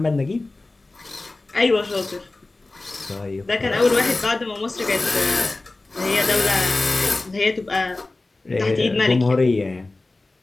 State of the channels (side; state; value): right; quieter; 3.1 dB